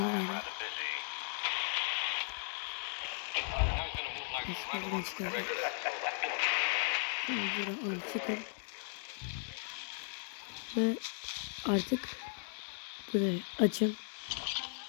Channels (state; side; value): silent; right; digital silence